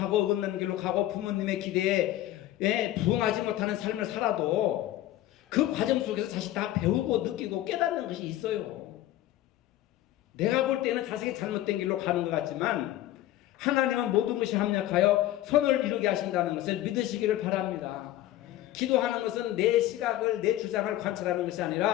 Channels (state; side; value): quieter; right; 14.2 dB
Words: 어긋난 길로 가고 부모님의 기대에 부응하지 못하는 삶을 살아도 그 과정 속에서 자식 다 배우고 느끼고 깨닫는 것이 있어요. 내가 볼 때는 자식이 잘못된 길로 가는 것 같지만 하나님은 모든 것이 합력하여 선을 이루게 하신다는 것을 믿으시기를 바랍니다. 기도하는 것은 내 시각을, 내 주장을 관찰하는 것이